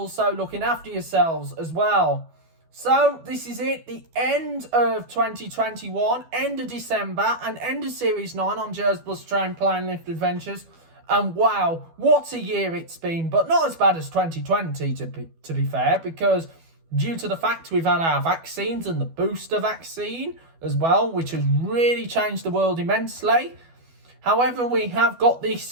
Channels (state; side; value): late; left; 12 ms